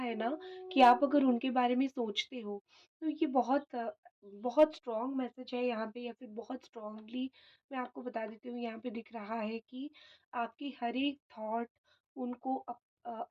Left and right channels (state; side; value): identical; both; correlation 1.00